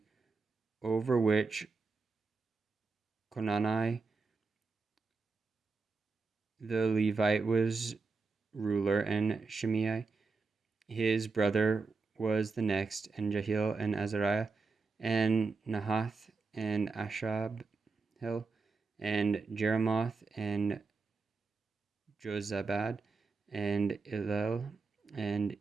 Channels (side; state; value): left; quieter; 4.2 dB